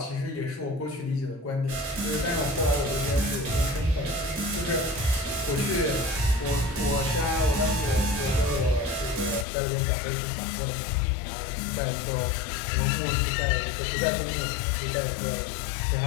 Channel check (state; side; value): drops out; right; at 9.5 s